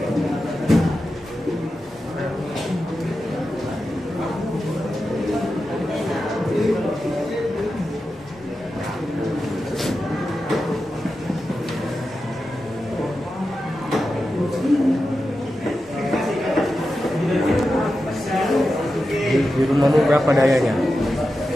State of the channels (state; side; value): normal; both; correlation 0.91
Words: Di rumahmu berapa dayanya?